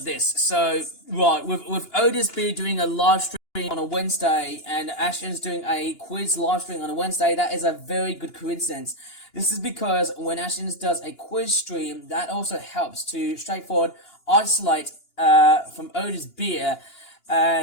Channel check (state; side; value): late; right; 2.9 ms